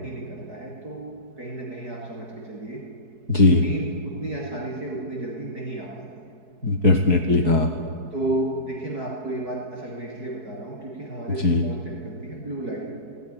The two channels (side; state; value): left; late; 4.6 ms